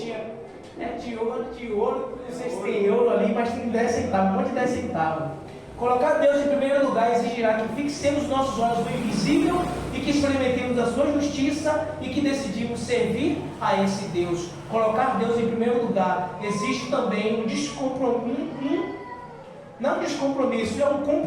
Né? De ouro, não sei se tem euro ali, mas tem 10 centavos, um monte de 10 centavos. Colocar Deus em primeiro lugar exigirá que fixemos nossos olhos no invisível e que experimentemos a sua justiça e que decidimos servir a esse Deus. Colocar Deus em primeiro lugar existe também um descompromisso. Não descompromisso, é um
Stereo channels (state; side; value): identical; both; correlation 1.00